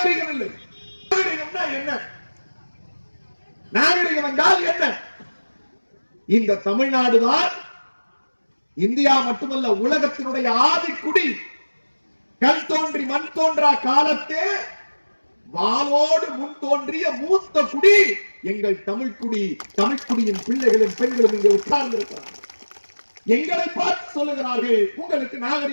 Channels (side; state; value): both; inverted; correlation -1.00